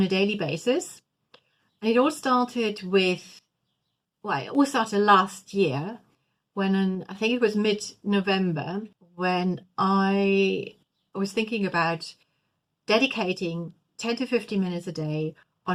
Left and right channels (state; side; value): identical; both; correlation 1.00